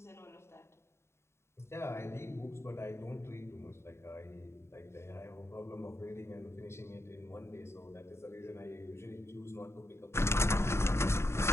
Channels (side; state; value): right; late; 0.13 ms